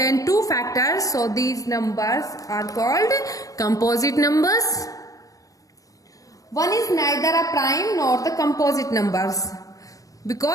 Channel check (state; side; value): late; right; 0.17 ms